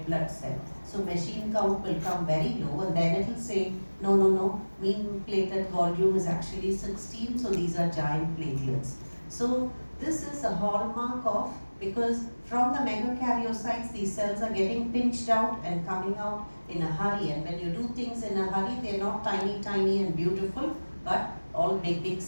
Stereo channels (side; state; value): both; inverted; correlation -1.00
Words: blood cell. So machine count will come very low, and then it will say, no, mean platelet volume is actually 16, so these are giant platelets. So this is a hallmark of, because from the megakaryocytes, these cells are getting pinched out and coming out in a hurry. And when you do things in a hurry, they're not tiny and beautiful, but all big